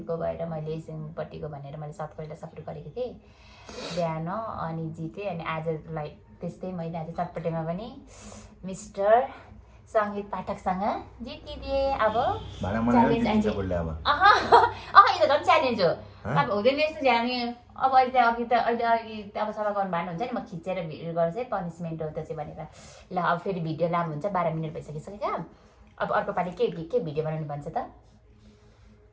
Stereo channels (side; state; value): both; identical; correlation 1.00